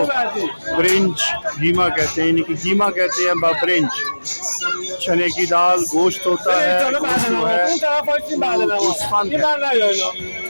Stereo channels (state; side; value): inverted; both; correlation -1.00